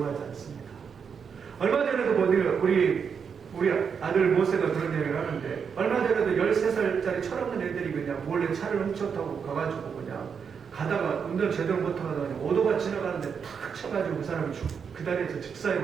않습니다. 얼마 전에도 우리 아들 모세가 그런 얘기를 하는데, 얼마 전에도 13살짜리 철없는 애들이 그냥 몰래 차를 훔쳐 타고 가가지고 그냥 가다가 운전 제대로 못하다가 오토바이 지나가는데 탁 쳐가지고 그 사람이 그 다리에서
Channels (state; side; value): quieter; left; 6.5 dB